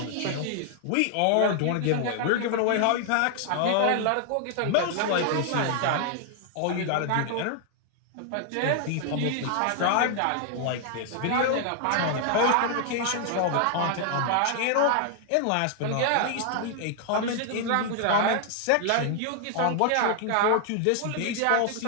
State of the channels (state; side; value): different; both; correlation 0.00